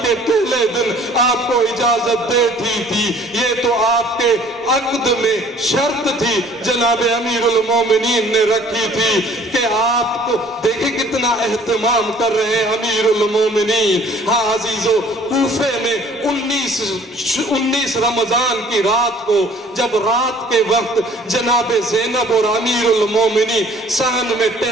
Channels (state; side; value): normal; both; correlation 0.54